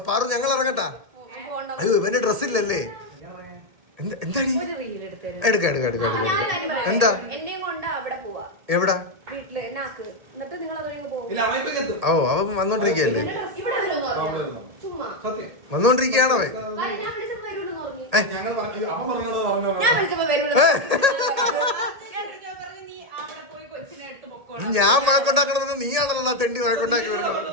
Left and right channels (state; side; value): late; left; 1.8 ms